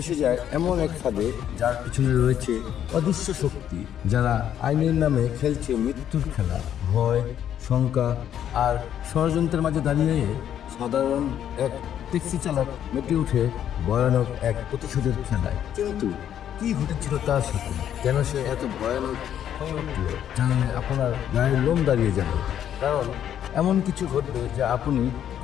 যায় এমন এক ফাঁদে যার পিছনে রয়েছে অদৃশ্য শক্তি, যারা আইনের নামে খেলছে মৃত্যুর খেলা। ভয়, শঙ্কা আর ষড়যন্ত্রের মাঝে দাঁড়িয়ে সাধারণ এক ট্যাক্সি চালক মেতে উঠে ভয়ানক এক প্রতিশোধের খেলায়। কিন্তু কি ঘটেছিল তার সাথে, কেন সে এত ভয়ানক হয়ে উঠল, জানলে আপনার গায়ের লোম দাঁড়িয়ে যাবে। কারণ এমন কিছু ঘটবে যা আপনি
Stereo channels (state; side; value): quieter; right; 10.1 dB